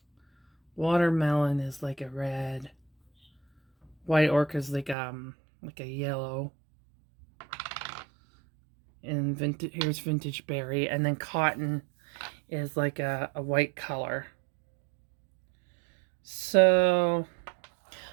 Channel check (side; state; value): left; drops out; at 5.0 s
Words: Watermelon is like a red. White orchid is like a yellow. And here's vintage berry, and then cotton is like a white color. So